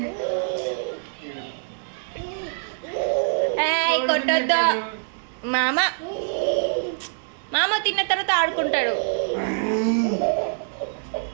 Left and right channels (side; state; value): left; silent; digital silence